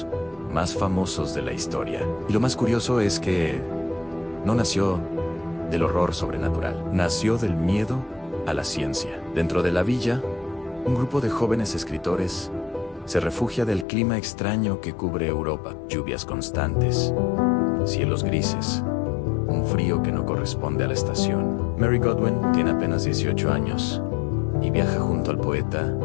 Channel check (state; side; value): drops out; right; at 13.9 s